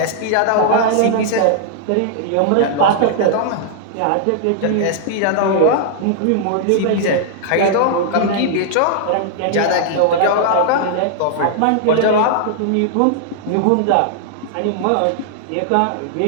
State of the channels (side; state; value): both; different; correlation -0.01